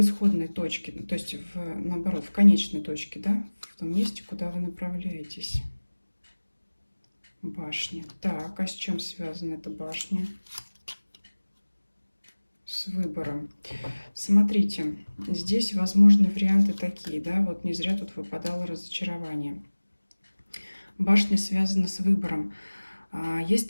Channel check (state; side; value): inverted; both; correlation -1.00